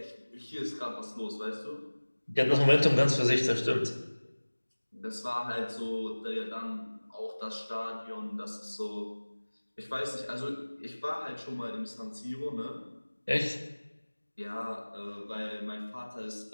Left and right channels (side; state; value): both; inverted; correlation -1.00